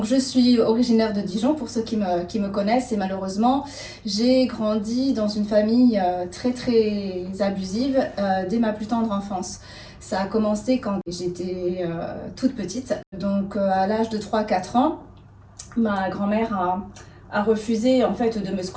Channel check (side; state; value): both; identical; correlation 1.00